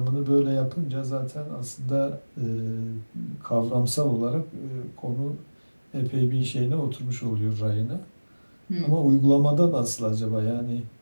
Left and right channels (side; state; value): both; inverted; correlation -1.00